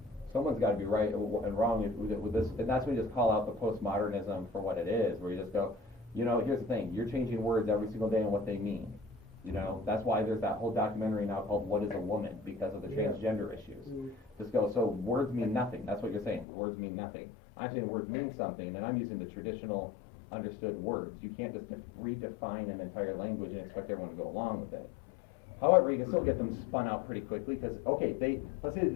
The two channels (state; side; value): drops out; right; at 16.4 s